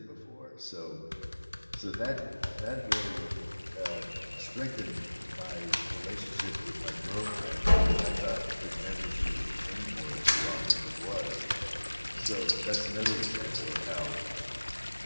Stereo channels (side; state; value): both; inverted; correlation -1.00